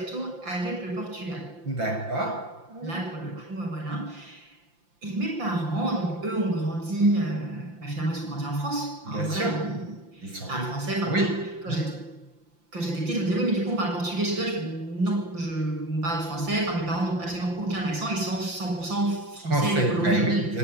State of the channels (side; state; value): left; late; 5.8 ms